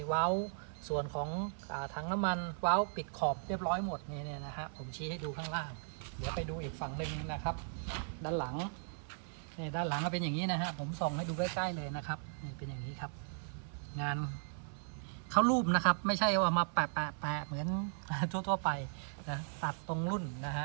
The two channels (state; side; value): silent; left; 53 dB below the other